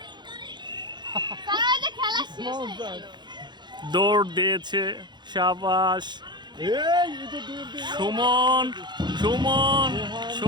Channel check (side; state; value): left; late; 0.21 ms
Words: তারা যে খেলা শেষ মামুন হয়ে স্যার গেল। দৌড় দিয়েছে, শাবাশ। এই এটা দূর দিয়ে সুমন, সুমন,